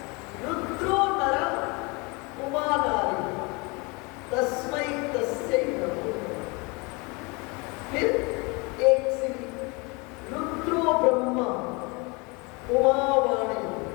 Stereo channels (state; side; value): quieter; right; 28.3 dB